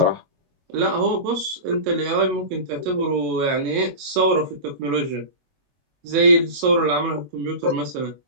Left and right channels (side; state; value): left; late; 22 ms